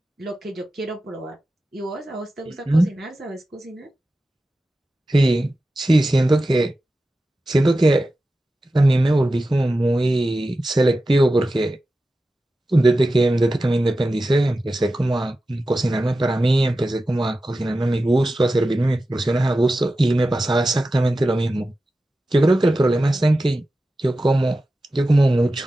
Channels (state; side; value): normal; both; correlation 0.93